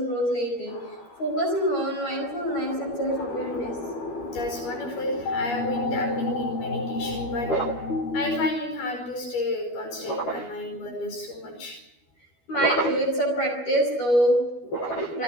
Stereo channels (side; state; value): right; late; 12 ms